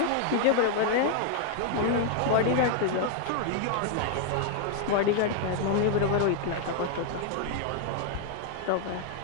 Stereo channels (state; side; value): different; both; correlation 0.00